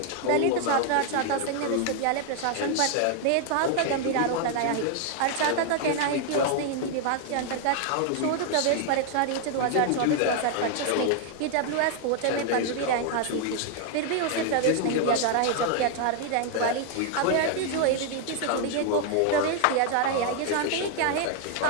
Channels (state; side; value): different; both; correlation 0.00